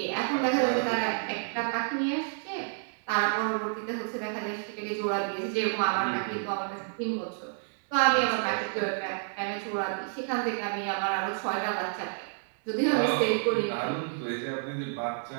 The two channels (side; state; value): left; silent; digital silence